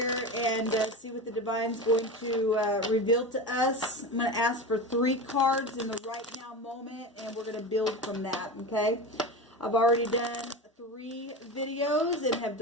and see what the Divine's going to reveal to us. I'm going to ask for 3 cards in the right now moment and we're going to build from that, okay? I've already done 3 videos and have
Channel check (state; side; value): normal; both; correlation 0.26